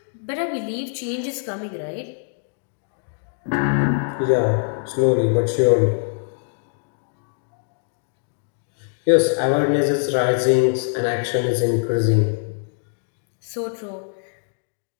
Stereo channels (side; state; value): right; silent; digital silence